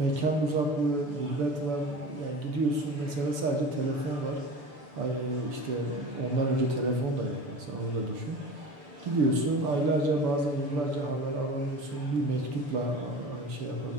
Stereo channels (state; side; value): late; left; 6.9 ms